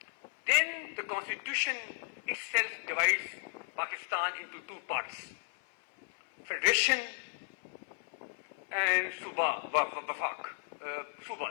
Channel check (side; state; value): right; silent; 55 dB below the other